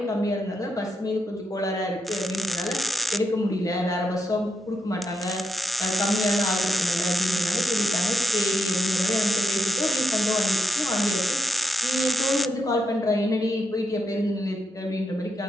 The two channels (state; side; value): normal; both; correlation 0.84